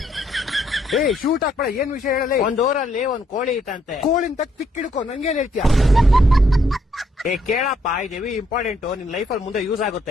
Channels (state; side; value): normal; both; correlation 0.71